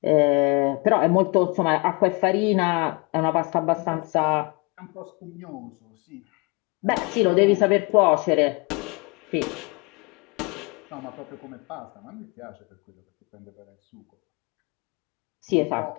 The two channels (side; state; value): right; quieter; 30.0 dB